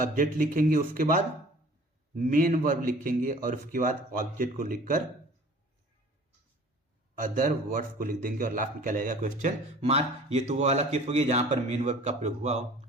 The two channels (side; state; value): both; normal; correlation 0.48